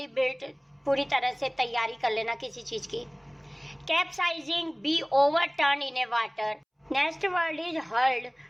बिल्ट, पूरी तरह से तैयारी कर लेना किसी चीज की। Capsizing, be overturn in a water. Next word is hurled,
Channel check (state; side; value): identical; both; correlation 1.00